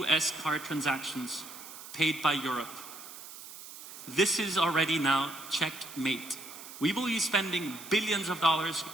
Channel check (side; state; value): right; noise; hiss, 14 dB below the sound